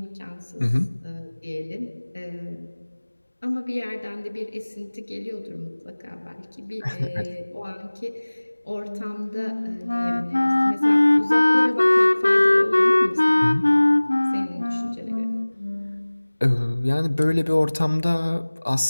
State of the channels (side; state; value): both; inverted; correlation -1.00